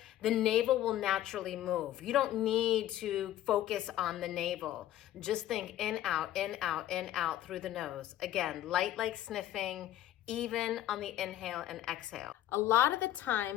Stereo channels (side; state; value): right; quieter; 13.1 dB